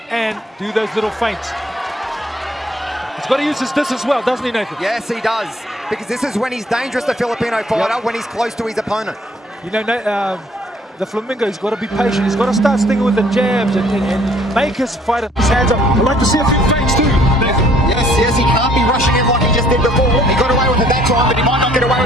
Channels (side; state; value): both; normal; correlation 0.60